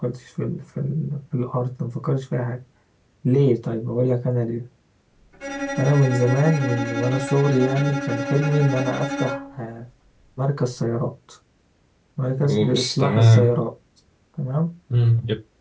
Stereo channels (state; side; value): identical; both; correlation 1.00